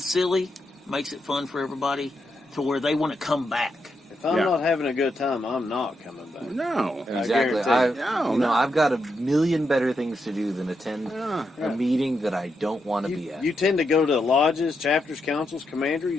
makes it fun for everybody to where they want to come back. If I'm Yeah. not having a good time, I'm not coming back. No. Exactly. guarantee. I've got a million better things to do than attend Yeah. a meeting that I don't want to be at. You tend to go to lodges, chapters, councils,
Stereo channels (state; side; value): normal; both; correlation 0.83